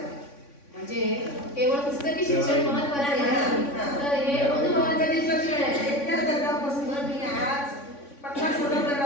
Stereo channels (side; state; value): right; late; 3.5 ms